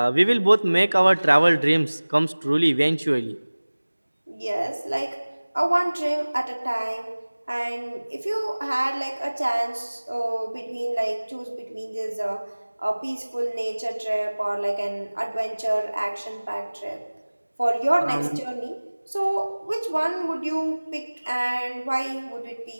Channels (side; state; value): both; inverted; correlation -1.00